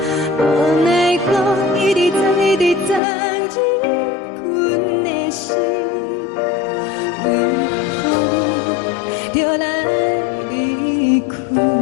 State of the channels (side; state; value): right; drops out; at 3.0 s